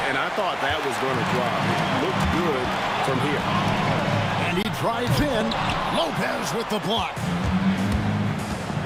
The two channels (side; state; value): both; identical; correlation 1.00